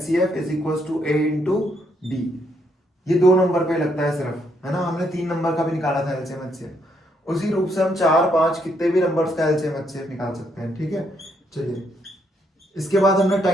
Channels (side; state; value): both; normal; correlation 0.74